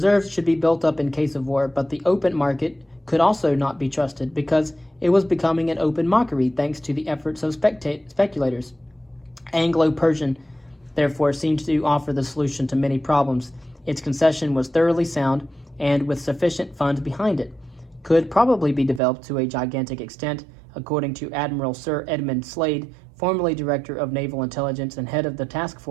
should be built up in case of war, but the open market could also not be trusted because it was becoming an open mockery thanks to the efforts of speculators. Anglo-Persian, therefore, seemed to offer the solution to many problems. Its concession was thoroughly sound and with sufficient funds behind it. Could probably be developed to a gigantic extent, according to Admiral Sir Edmund Slade, formerly Director of Naval Intelligence and head of the task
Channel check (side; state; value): left; drops out; at 19.0 s